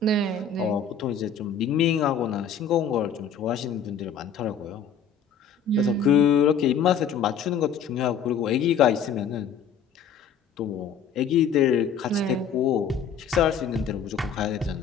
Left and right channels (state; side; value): quieter; right; 6.5 dB